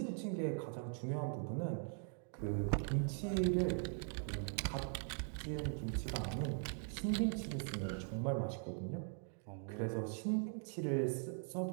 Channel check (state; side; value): silent; left; 50 dB below the other